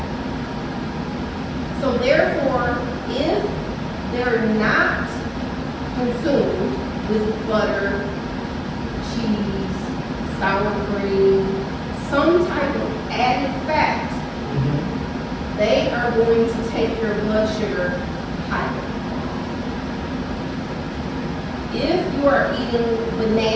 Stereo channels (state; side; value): identical; both; correlation 1.00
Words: So therefore, if they're not consumed with butter, cheese, sour cream, some type of added fat, they are going to take your blood sugar higher. If you are eating